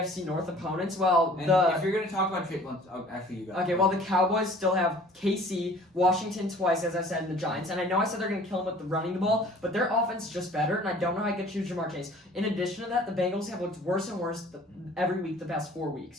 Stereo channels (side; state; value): both; normal; correlation 0.50